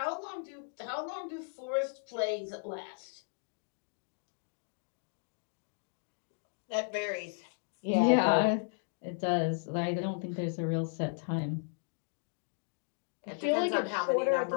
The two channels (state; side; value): silent; right; digital silence